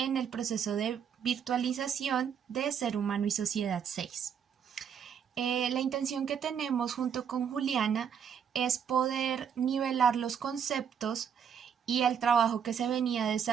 el proceso de virtualización de Ser Humano y Sociedad 6. La intención que tenemos junto con Juliana es poder nivelar los conceptos y el trabajo que se venía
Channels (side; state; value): left; quieter; 7.8 dB